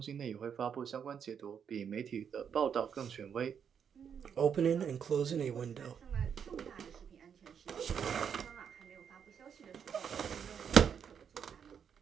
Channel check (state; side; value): quieter; left; 7.5 dB